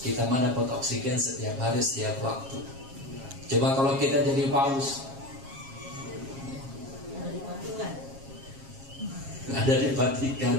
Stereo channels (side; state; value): left; late; 7.4 ms